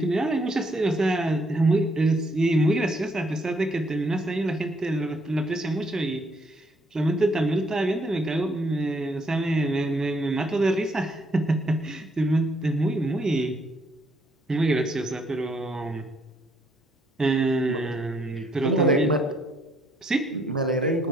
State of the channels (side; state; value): both; normal; correlation 0.70